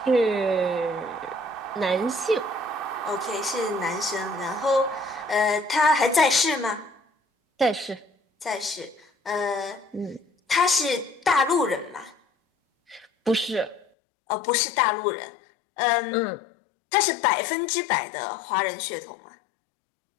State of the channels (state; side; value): drops out; right; at 13.9 s